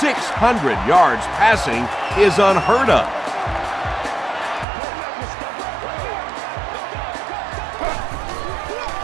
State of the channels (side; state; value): left; drops out; at 4.7 s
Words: 600 yards passing is unheard of.